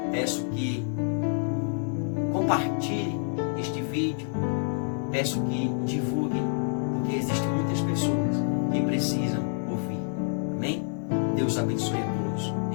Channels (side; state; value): right; silent; 60 dB below the other